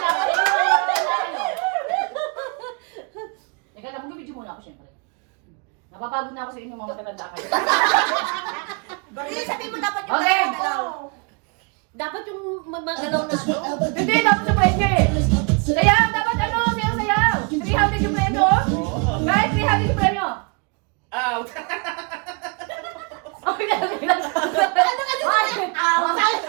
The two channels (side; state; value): left; quieter; 34.5 dB